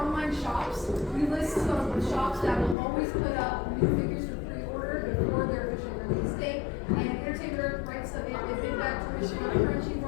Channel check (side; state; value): right; drops out; at 2.8 s